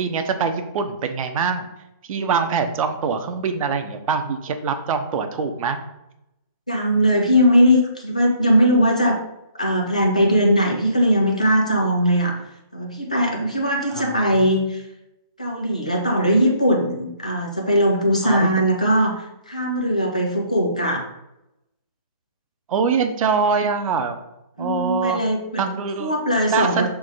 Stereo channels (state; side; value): inverted; both; correlation -0.56